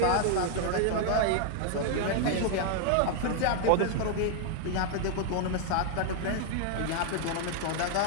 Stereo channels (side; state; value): both; different; correlation 0.00